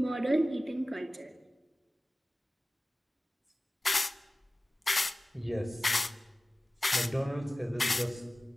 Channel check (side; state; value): both; normal; correlation 0.97